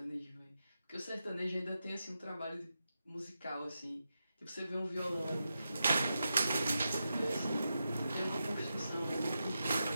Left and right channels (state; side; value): inverted; both; correlation -0.88